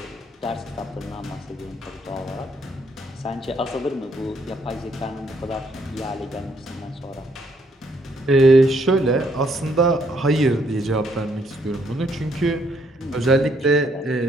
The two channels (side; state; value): both; normal; correlation 0.70